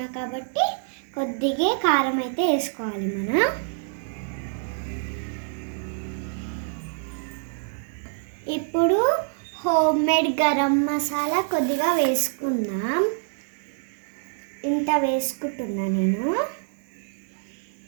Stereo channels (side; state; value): left; silent; digital silence